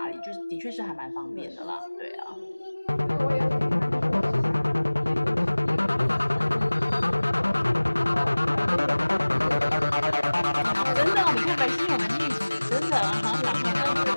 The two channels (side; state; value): both; inverted; correlation -1.00